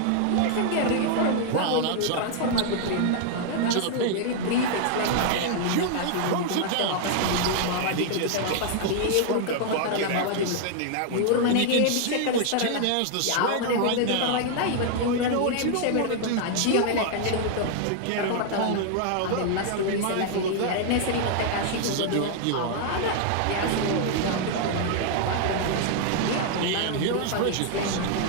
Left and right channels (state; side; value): different; both; correlation 0.00